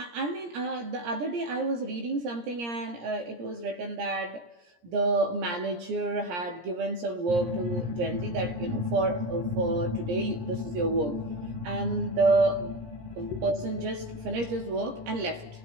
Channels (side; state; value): left; late; 17 ms